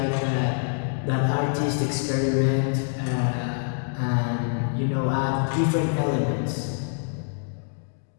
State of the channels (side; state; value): right; silent; digital silence